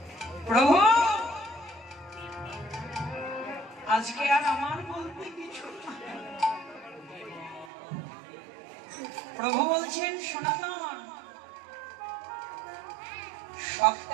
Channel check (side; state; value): left; drops out; at 7.7 s